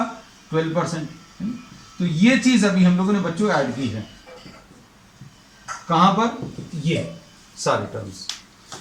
12%। तो ये चीज अभी हम लोगों ने बच्चों ऐड की है, कहां पर, ये सारे टर्म्स।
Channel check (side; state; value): both; identical; correlation 1.00